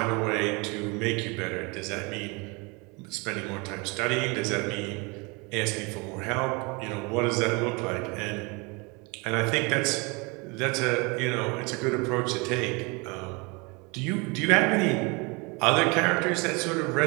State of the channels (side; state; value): left; quieter; 28.6 dB